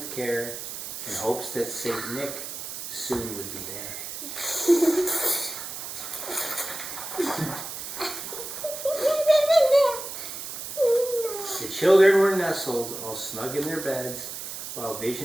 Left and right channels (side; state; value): right; noise; hiss, 8 dB below the sound